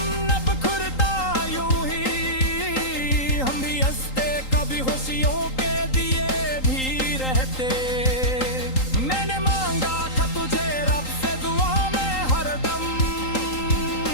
न बिखरता यूं ही, हम भी हंसते कभी खुशियों के दिए भी रहते। मैंने मांगा था तुझे रब से दुआ में हरदम,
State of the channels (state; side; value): late; right; 3.8 ms